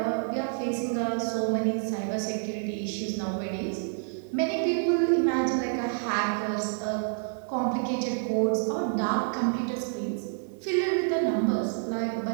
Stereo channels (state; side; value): silent; left; 59 dB below the other